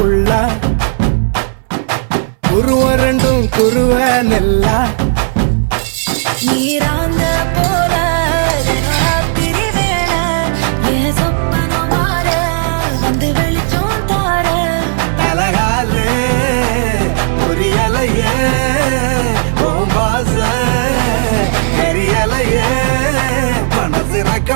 குருவ ரெண்டும் குருவ நெல்லா நீராங்க போல ராத்திரி வேளை என் சொப்பனம் மாற வந்து வெளிச்சம் தார அழகாலே பொரியலையே ஓம்பாச தெரியலையே மனசு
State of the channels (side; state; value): left; silent; digital silence